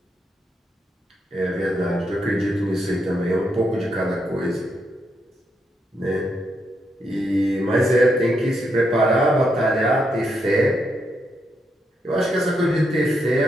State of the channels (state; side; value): normal; both; correlation 0.80